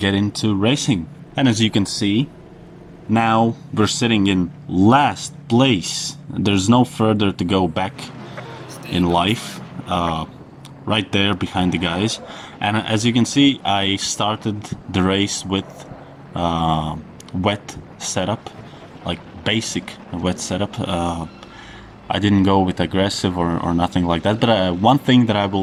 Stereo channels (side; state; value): both; identical; correlation 1.00